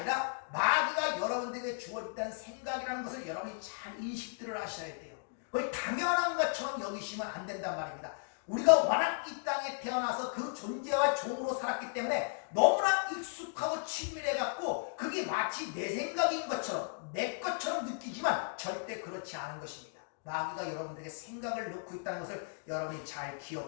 마귀가 여러분들에게 주었다는 생각이라는 것을 여러분이 잘 인식들을 하셔야 돼요. 그걸 당연한 것처럼 여기시면 안 된단 말입니다. 우리가 워낙 이 땅에 태어나서 그 존재와 종으로 살았기 때문에 너무나 익숙하고 친밀해갖고 그게 마치 내 생각인 것처럼 내 것처럼 느끼지만 절대 그렇지 않은 것입니다. 마귀가 여러분들에게 생각을 넣고 있다는 것을 여러분이 잘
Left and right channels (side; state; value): right; silent; digital silence